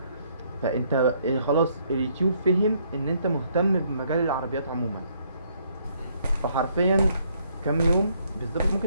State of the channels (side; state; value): both; inverted; correlation -0.68